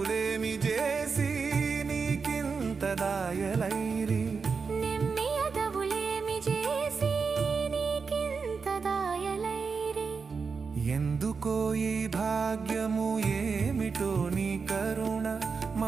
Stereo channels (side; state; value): left; quieter; 5.2 dB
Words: చేసి నీకింత దాయలైరి ఎందుకో ఈ భాగ్యము ఏమిటో నీ కరుణ